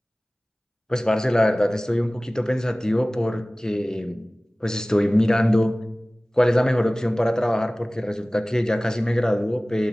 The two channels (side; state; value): both; normal; correlation 0.98